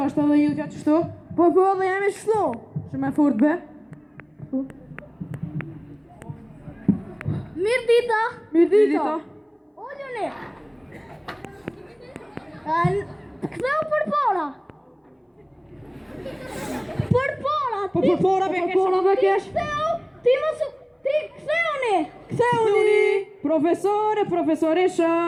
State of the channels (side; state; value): both; identical; correlation 1.00